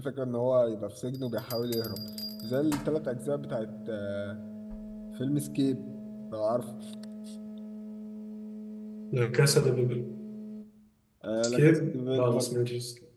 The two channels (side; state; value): both; identical; correlation 1.00